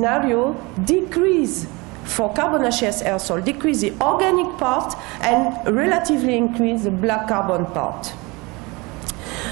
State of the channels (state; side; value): quieter; left; 25.5 dB